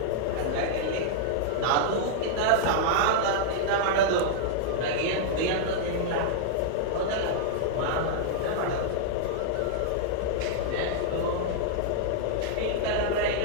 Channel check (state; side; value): different; both; correlation -0.01